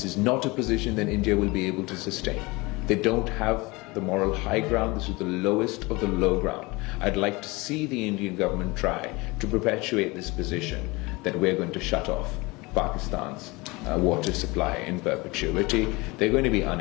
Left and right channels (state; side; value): quieter; right; 24.0 dB